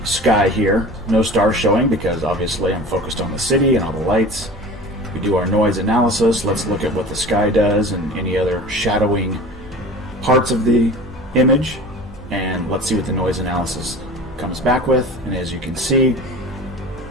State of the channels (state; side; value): normal; both; correlation 0.38